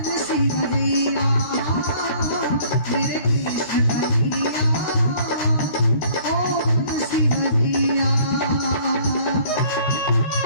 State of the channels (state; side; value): late; right; 13 ms